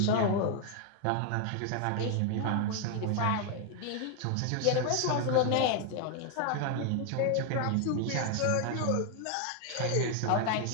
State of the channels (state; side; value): different; both; correlation 0.01